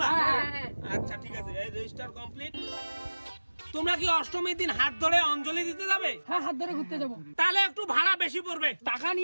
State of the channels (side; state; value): both; inverted; correlation -1.00